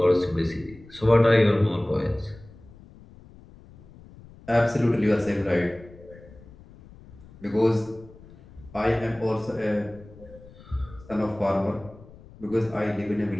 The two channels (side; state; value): left; noise; rumble, 21 dB below the sound